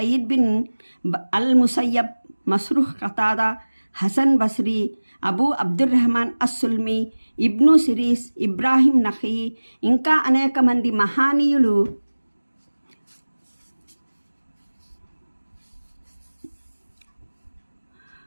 బిన్ అల్ ముసయ్యబ్, మస్రూహ్ ఖతాదా, హసన్ బస్రీ, అబూ అబ్దుర్రహమాన్ అస్సుల్మి, ఇబ్ను సిరీస్, ఇబ్రాహిం నఖీ ఇంకా అనేక మంది మహానీయులు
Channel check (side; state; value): both; inverted; correlation -1.00